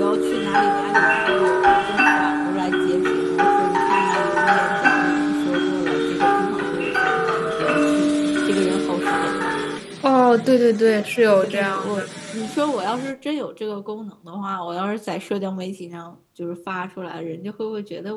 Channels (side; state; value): both; identical; correlation 1.00